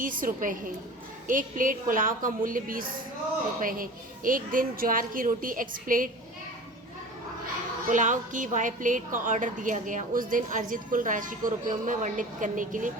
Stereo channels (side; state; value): both; normal; correlation 0.37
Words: रुपये है। एक प्लेट पुलाव का मूल्य 20 रुपये है। एक दिन ज्वार की रोटी x प्लेट, पुलाव की y प्लेट का ऑर्डर दिया गया। उस दिन अर्जित कुल राशि को रुपयों में वर्णित करने के लिए